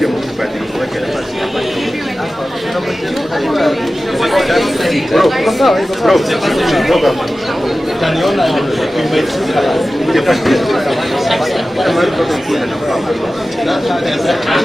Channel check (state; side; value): normal; both; correlation 0.95